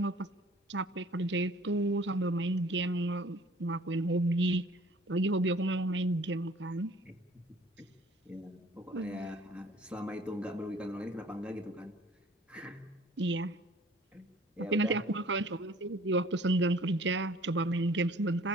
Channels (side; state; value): both; normal; correlation 0.52